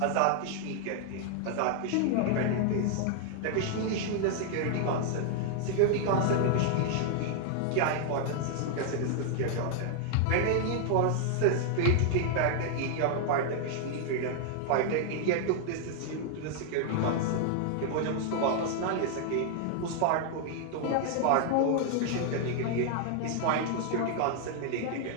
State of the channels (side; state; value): both; different; correlation 0.00